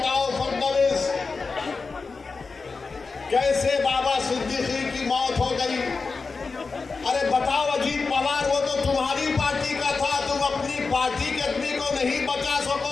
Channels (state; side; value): quieter; right; 4.4 dB